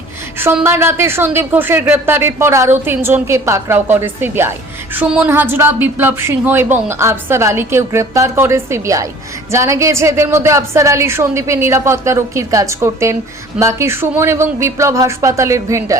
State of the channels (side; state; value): both; normal; correlation 0.48